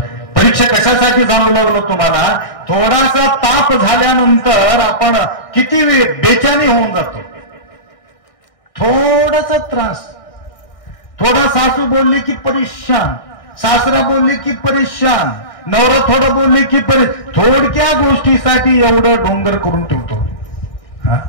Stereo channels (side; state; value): right; late; 1.6 ms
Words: कशासाठी जाणू लागलो तुम्हाला. थोडासा ताप झाल्यानंतर आपण किती बेचैनी होऊन जातो. थोडासा त्रास, थोडा सासू बोलली की परेशान, सासरा बोलली की परेशान, नवरा थोडं बोलले की थोडक्या गोष्टीसाठी एवढं डोंगर करून ठेवतो. हा